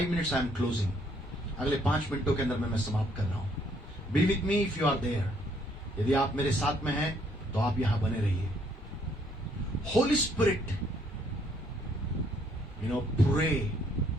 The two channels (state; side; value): normal; both; correlation 0.67